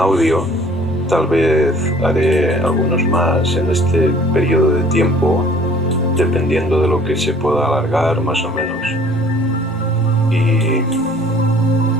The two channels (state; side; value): normal; both; correlation 0.53